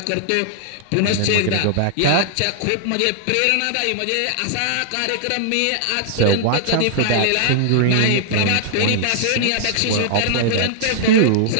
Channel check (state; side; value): different; both; correlation -0.01